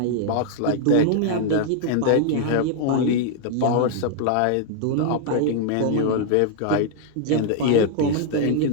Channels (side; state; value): both; different; correlation 0.00